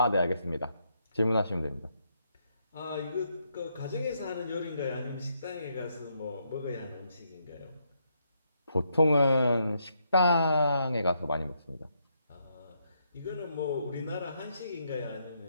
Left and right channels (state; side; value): inverted; both; correlation -0.77